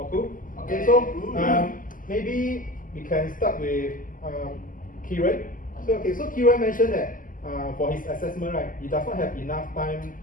cool. Okay, so maybe we can start with Kieran. So Kieran mentioned that for his assessment, right, he does not have enough time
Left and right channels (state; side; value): late; right; 0.39 ms